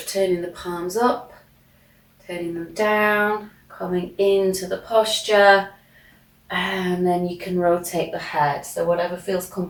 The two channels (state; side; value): identical; both; correlation 1.00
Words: turning the palms up, turning them down, coming into the posture, and then you can rotate the head. So whatever feels